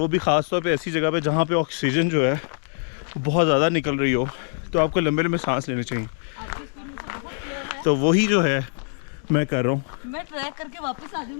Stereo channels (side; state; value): right; silent; 63 dB below the other